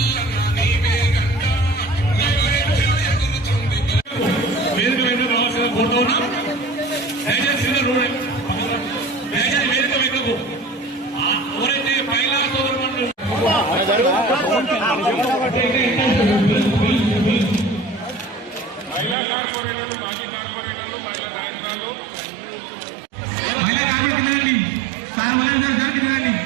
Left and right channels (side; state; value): left; drops out; at 19.2 s